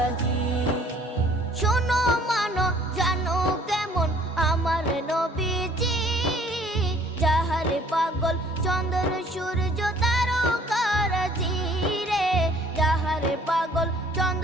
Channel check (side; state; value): both; normal; correlation 0.57